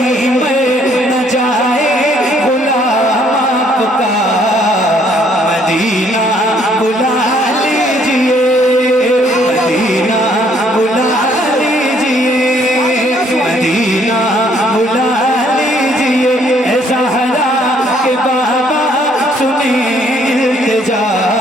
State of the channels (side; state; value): both; normal; correlation 0.65